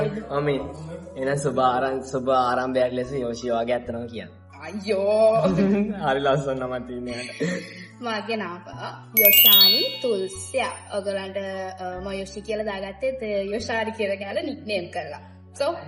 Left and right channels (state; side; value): identical; both; correlation 1.00